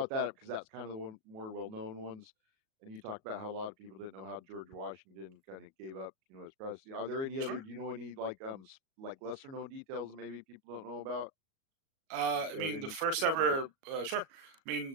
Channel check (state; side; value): late; left; 37 ms